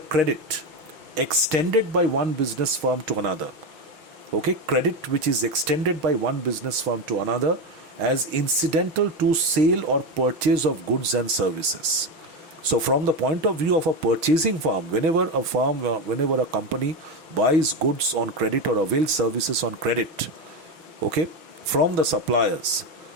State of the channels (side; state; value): left; late; 6.0 ms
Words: extended by one business firm to another. Okay, credit which is extended by one business firm to another as incidental to sale or purchase of goods and services. So from the point of view of a purchasing firm, whenever a company buys goods on credit or avails services on credit, okay, from the suppliers,